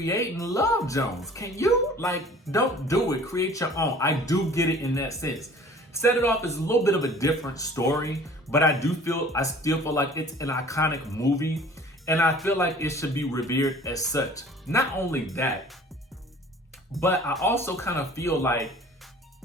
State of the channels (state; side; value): normal; both; correlation 0.48